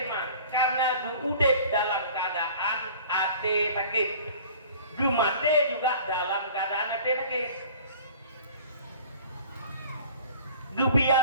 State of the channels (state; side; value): inverted; both; correlation -0.46